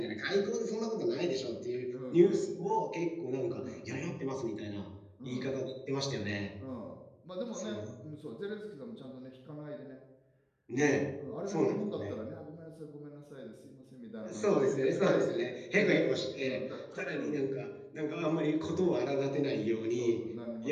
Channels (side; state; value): both; identical; correlation 1.00